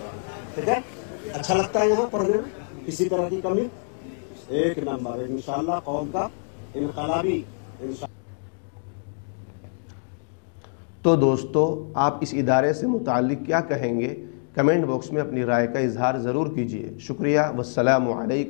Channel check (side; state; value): right; silent; digital silence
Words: ठीक है, अच्छा लगता है यहाँ पढ़ने में, किसी तरह की कमी। एक नंबर है इंशाअल्लाह, कौम का इनकलाबी। तो दोस्तों, आप इस इदारे से मुताल्लिक क्या कहेंगे, कमेंट बॉक्स में अपनी राय का इजहार ज़रूर कीजिए। शुक्रिया। वस्सलामु